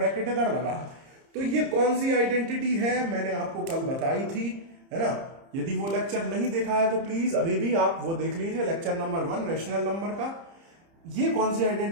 इधर लगा है। तो ये कौन सी आइडेंटिटी है, मैंने आपको कल बताई थी, है ना। यदि वो लेक्चर नहीं देखा है तो प्लीज अभी भी आप वो देख लीजिए, लेक्चर नंबर 1 रेशनल नंबर का। ये कौन सी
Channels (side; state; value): left; late; 30 ms